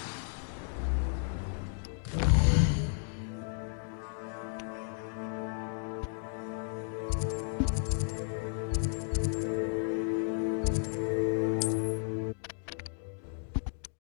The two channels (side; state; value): right; silent; 55 dB below the other